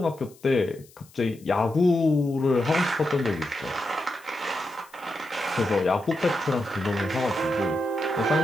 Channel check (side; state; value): left; noise; hiss, 26 dB below the sound